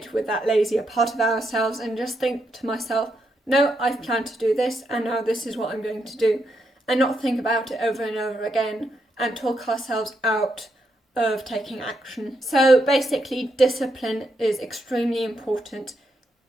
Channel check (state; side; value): normal; both; correlation 0.81